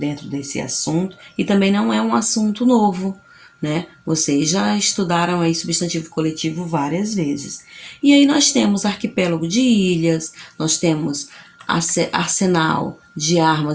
desse assunto. E também não é um assunto novo, né? Vocês já estudaram aí substantivo coletivo várias vezes. E aí nós temos arquipélago de ilhas, nós temos arsenal de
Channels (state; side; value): identical; both; correlation 1.00